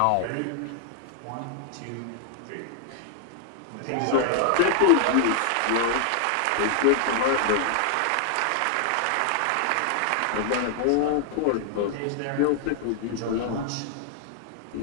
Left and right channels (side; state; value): both; different; correlation 0.00